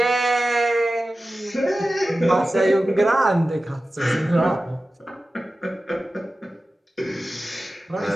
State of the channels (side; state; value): both; normal; correlation 0.95